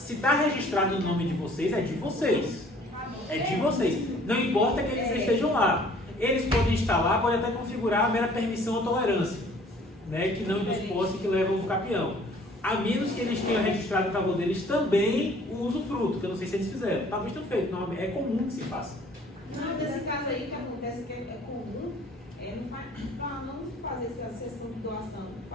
está registrado no nome de vocês, é de vocês. É de vocês. Não importa que eles estejam lá. Eles podem estar lá, podem até configurar a mera permissão ou tolerância, né, que não dos posse que levam o usucapião. A menos que eles tenham registrado a favor deles também o usufruto, que eu não sei se eles fizeram. Talvez tenham feito, não, é comum que se faça. Não, desse caso aí que acontece que é comum, para não fazer essa sessão de doação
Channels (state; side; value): normal; both; correlation 0.54